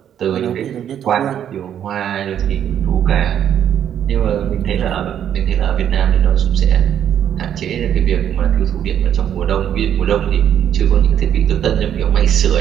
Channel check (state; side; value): quieter; left; 9.7 dB